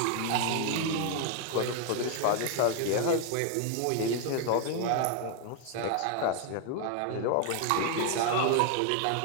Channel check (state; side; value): different; both; correlation 0.01